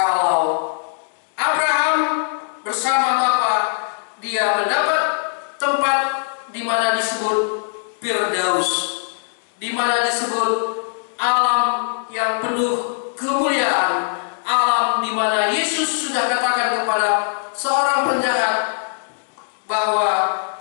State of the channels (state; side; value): silent; right; digital silence